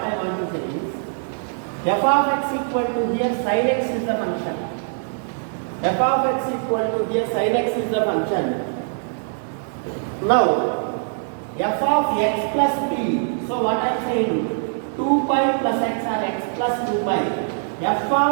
want to say is, f of x equal to here sin x is the function. F of x equal to here sin x is the function. Now f of x plus p. So what I am saying, 2 pi plus x or x plus 2 pi. F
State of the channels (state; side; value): silent; left; digital silence